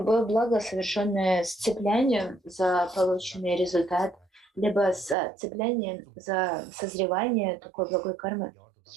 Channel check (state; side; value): drops out; left; at 5.2 s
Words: благо, совершенное с цеплянием за полученный результат, либо с цеплянием за созревание такой благой кармы,